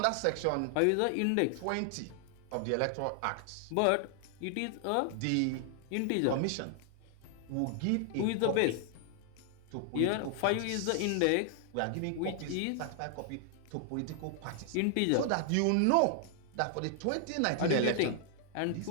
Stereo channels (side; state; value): both; different; correlation 0.00